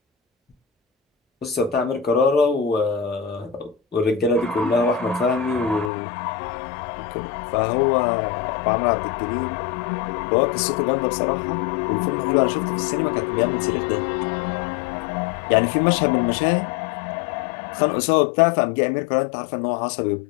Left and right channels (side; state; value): right; drops out; at 5.9 s